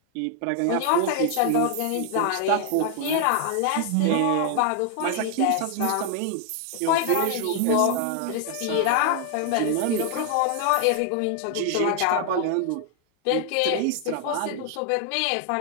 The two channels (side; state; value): both; different; correlation 0.00